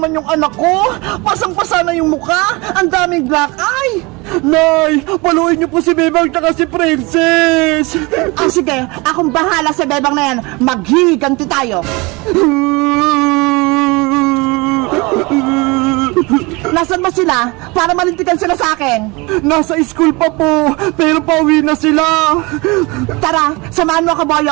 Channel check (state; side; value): quieter; left; 25.6 dB